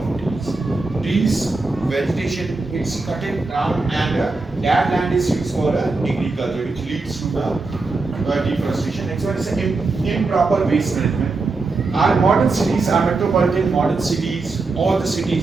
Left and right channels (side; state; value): left; quieter; 3.7 dB